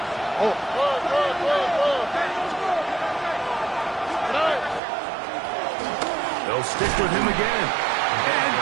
Oh. They'll stick with him again. And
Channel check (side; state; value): left; drops out; at 4.8 s